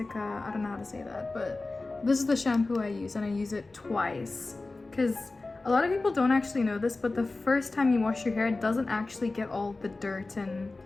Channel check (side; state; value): right; quieter; 3.3 dB